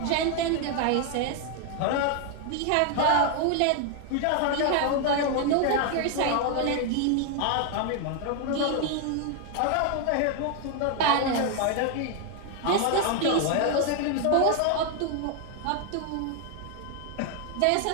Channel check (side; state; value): both; different; correlation 0.01